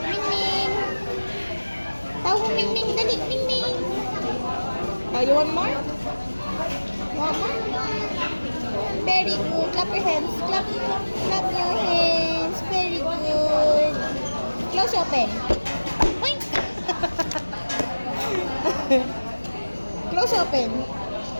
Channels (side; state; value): both; inverted; correlation -1.00